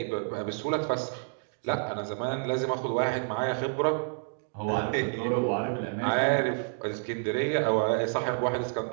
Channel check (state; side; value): silent; left; digital silence